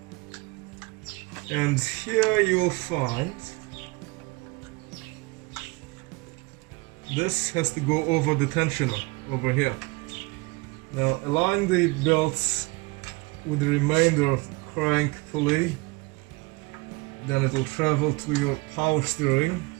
And here you'll find this has to go over the tensioner over here. Now align the belts with the remainder of the crank pulley, then it will travel to your power steering.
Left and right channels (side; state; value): left; quieter; 25.3 dB